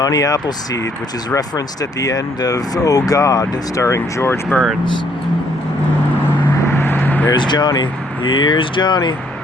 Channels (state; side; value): normal; both; correlation 0.67